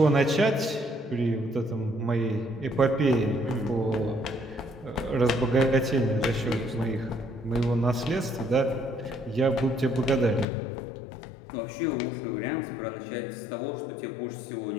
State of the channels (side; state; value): right; drops out; at 10.5 s